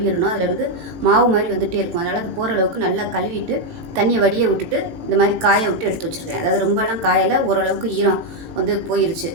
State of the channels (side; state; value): left; late; 18 ms